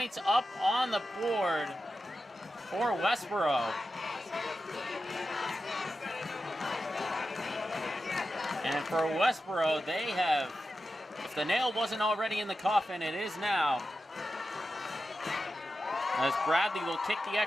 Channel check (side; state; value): both; normal; correlation 0.91